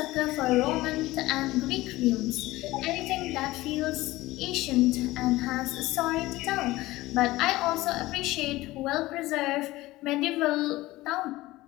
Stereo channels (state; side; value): quieter; right; 18.3 dB